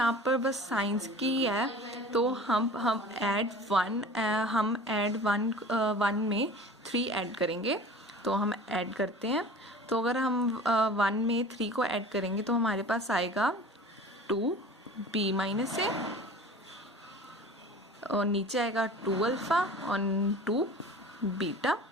पर बस साइंस की है, तो हम ऐड वन में 3 ऐड करेंगे, तो हम ऐड करते हैं। तो अगर हम 1 में 3 को ऐड करेंगे तो हमारे पास आएगा 2b माइनस ए, और नीचे आएगा 2 अल्फ़ा और 2 बीटा,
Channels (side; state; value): both; normal; correlation 0.40